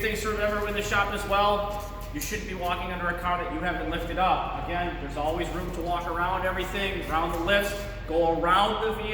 things to remember in the shop as well. You shouldn't be walking under a car that you haven't lifted up. Again, there's always room to walk around everything, around the lifts, go around the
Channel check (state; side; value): identical; both; correlation 1.00